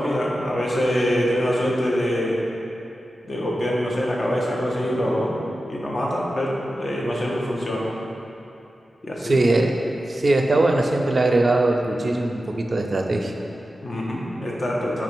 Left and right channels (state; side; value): normal; both; correlation 0.92